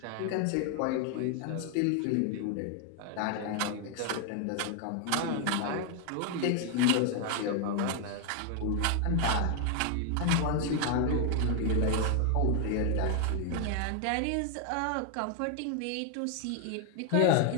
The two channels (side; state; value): both; different; correlation 0.01